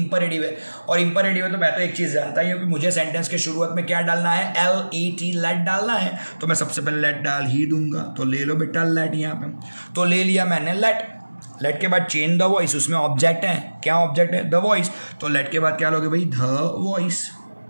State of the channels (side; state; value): both; inverted; correlation -1.00